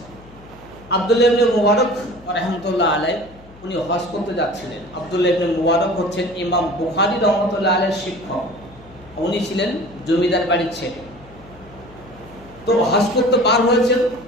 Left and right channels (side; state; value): left; noise; hum, 22 dB below the sound